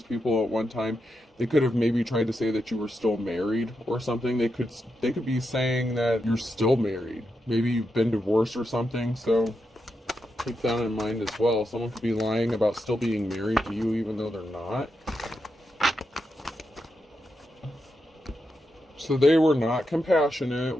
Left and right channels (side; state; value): both; normal; correlation 0.85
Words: people at one time, they could have maybe tried to say that you were still married or something. They could be saying that you're still married. Maybe you've been divorced or something, so keep that in mind as well. Someone could be lying about still being married to you even though they're not. So they were not compassionate